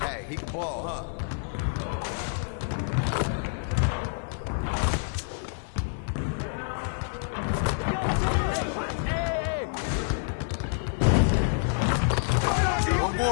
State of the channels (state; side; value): silent; right; digital silence